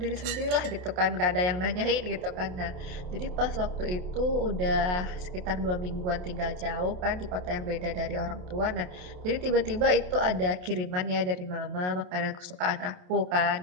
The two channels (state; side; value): late; left; 28 ms